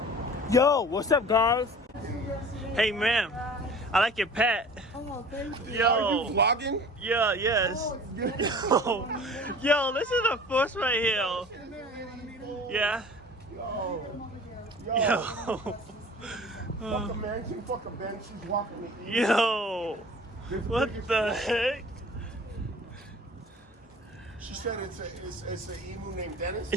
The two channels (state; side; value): normal; both; correlation 0.44